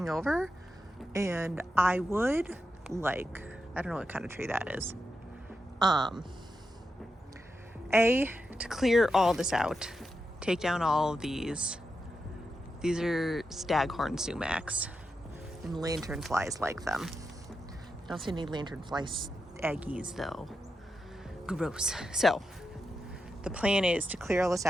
over. And I would like, I don't know what kind of tree that is. To clear all this out, take down all of these. These are staghorn sumacs, and lanternflies like them. I don't see any lanternfly eggies though. Gross. So the plan is to clear all this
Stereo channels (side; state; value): both; normal; correlation 0.87